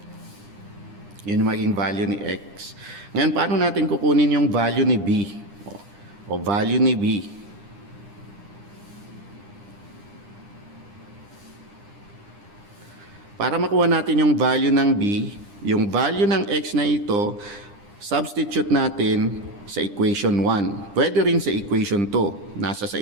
Yun yung maging value ni x. Ngayon, paano natin kukunin yung value ni b? O value ni b. Para makuha natin yung value ng b, yung value ng x na ito, substitute natin sa equation 1. Pwede rin sa equation 2. Nasa sa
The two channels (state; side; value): late; left; 9.9 ms